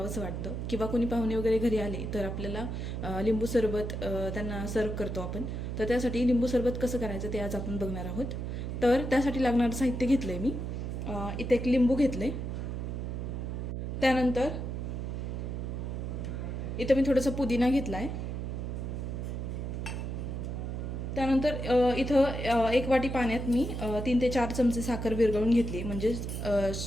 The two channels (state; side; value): noise; right; hum, 4 dB below the sound